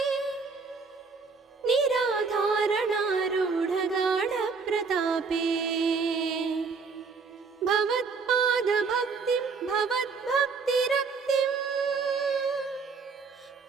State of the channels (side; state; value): left; quieter; 4.9 dB